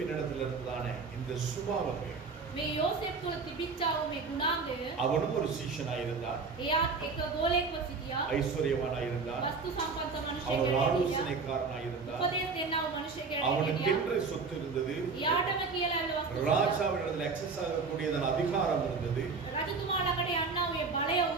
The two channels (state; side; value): quieter; left; 4.6 dB